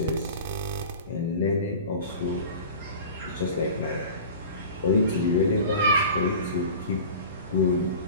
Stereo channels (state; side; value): inverted; both; correlation -0.37